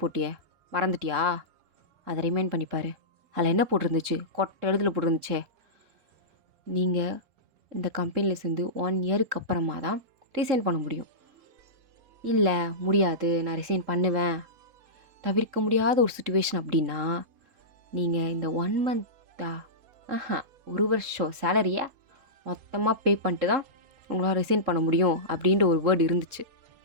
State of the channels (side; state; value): left; late; 3.7 ms